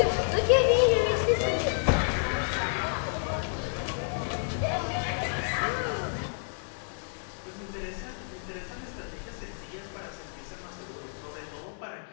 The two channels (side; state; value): right; silent; digital silence